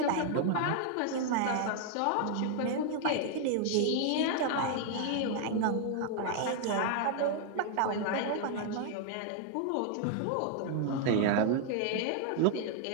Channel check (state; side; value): different; both; correlation 0.00